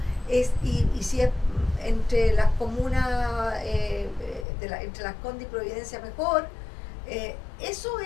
y si es entre las comunas, entre Las Condes y Providencia mejor, eso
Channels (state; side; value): drops out; right; at 4.5 s